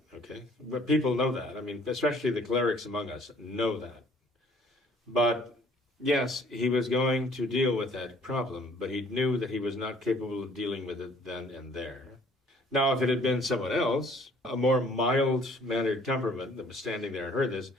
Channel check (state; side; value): normal; both; correlation 0.57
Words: okay? But people know that. I mean, especially the clerics among us know that. But yes, he was going to deal with that problem, but he knew that he was not capable of dealing with it then and there. Now, if it had been someone else, a more mild-mannered temperament that was standing there and heard this,